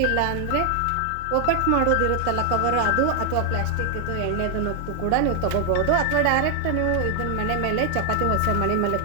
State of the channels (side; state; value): both; different; correlation 0.00